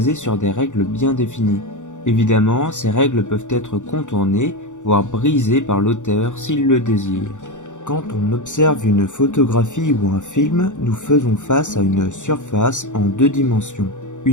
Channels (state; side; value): late; right; 0.85 ms